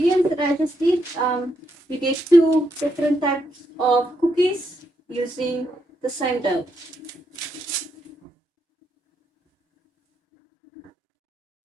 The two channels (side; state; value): both; normal; correlation 0.79